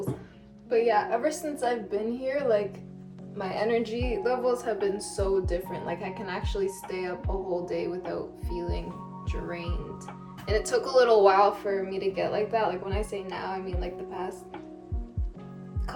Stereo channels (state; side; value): identical; both; correlation 1.00